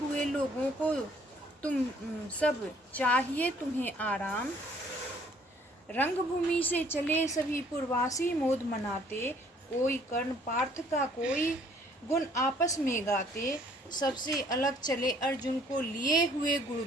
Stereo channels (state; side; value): normal; both; correlation 0.60